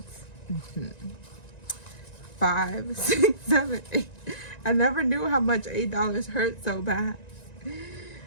5, 6, 7, 8. I never knew how much $8 hurt so bad.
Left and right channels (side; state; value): right; late; 1.9 ms